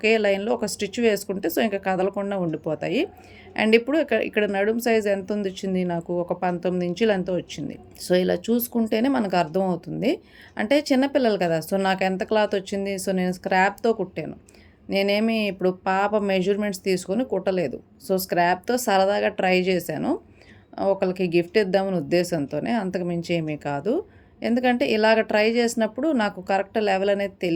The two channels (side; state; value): both; identical; correlation 1.00